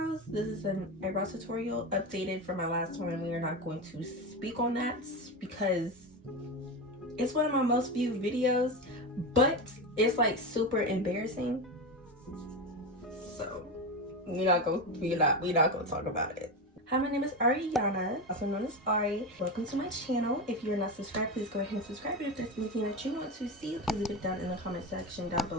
This is an eyebrow tutorial updated from my last one, and we are not going to speak on that because it's one of my most viewed videos, but it's like super embarrassing. So we're not gonna talk about it. Hi, my name is Ariana, also known as Ari. Welcome to my channel. If you're not subscribed, please go ahead and subscribe. And if there's anything that you want to see, please leave it down in the comment section down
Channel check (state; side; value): normal; both; correlation 0.18